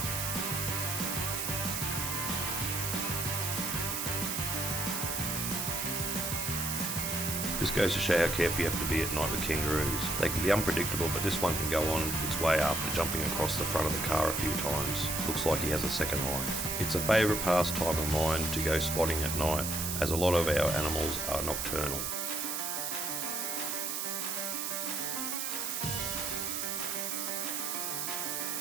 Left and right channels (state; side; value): noise; right; hiss, 2 dB below the sound